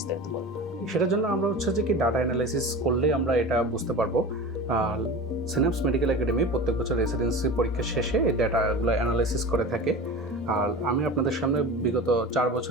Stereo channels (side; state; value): both; normal; correlation 0.32